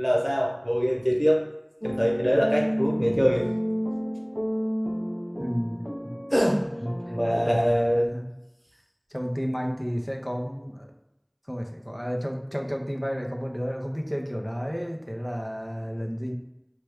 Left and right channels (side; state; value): both; identical; correlation 1.00